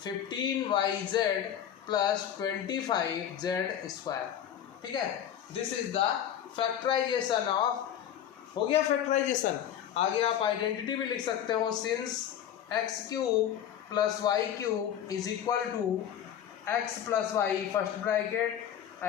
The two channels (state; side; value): quieter; right; 9.9 dB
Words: 15yz plus 25z square, ठीक है। This is the factorisation of, हो गया फैक्टराइजेशन। आगे आप आइडेंटिटी भी लिख सकते हो, since x³ plus y³ is equal to x plus y first bracket